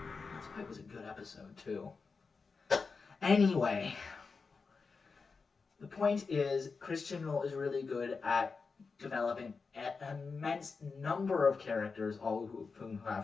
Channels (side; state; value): right; quieter; 4.7 dB